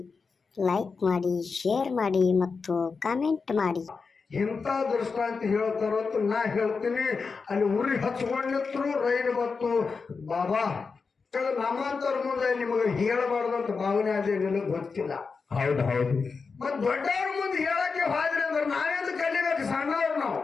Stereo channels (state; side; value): quieter; right; 4.9 dB